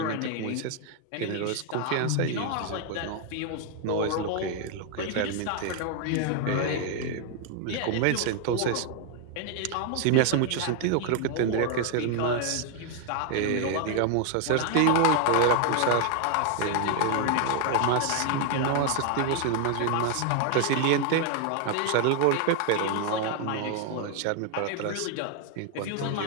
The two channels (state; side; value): different; both; correlation 0.00